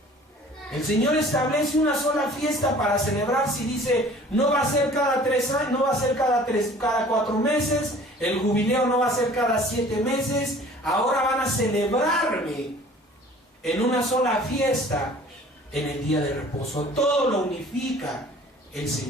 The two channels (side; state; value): both; normal; correlation 0.49